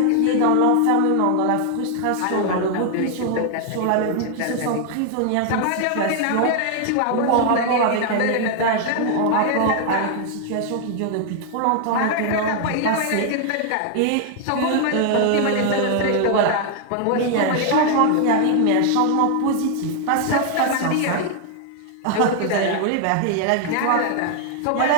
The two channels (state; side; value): different; both; correlation 0.00